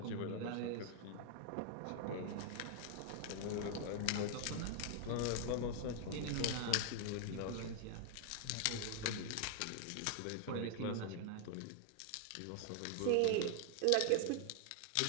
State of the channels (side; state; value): both; different; correlation 0.00